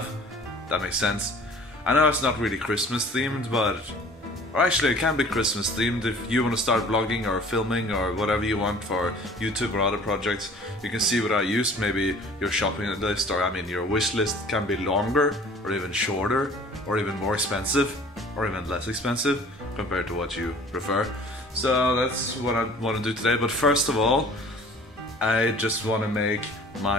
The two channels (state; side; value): normal; both; correlation 0.49